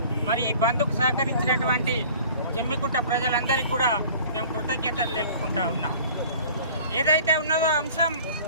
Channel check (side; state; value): both; inverted; correlation -0.47